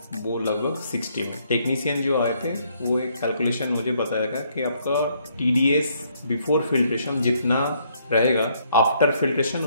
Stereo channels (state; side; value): inverted; both; correlation -0.69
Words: वो लगभग 60 में। टेक्नीशियन जो आए थे वो एक कैलकुलेशन मुझे बताया कि आपका TDS बिफोर फिल्ट्रेशन जितना रहेगा आफ्टर फिल्ट्रेशन